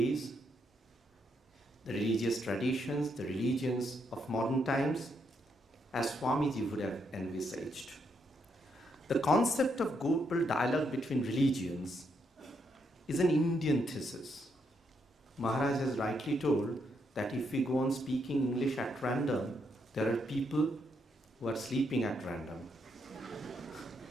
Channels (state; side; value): normal; both; correlation 0.77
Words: the religions of modern times, as Swamiji would have envisaged. The concept of global dialogue between religions is an Indian thesis. Maharaj has rightly told that if we go on speaking English at random, there are people who are sleeping at random.